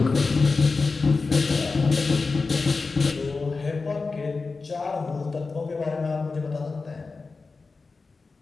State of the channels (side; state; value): right; quieter; 4.1 dB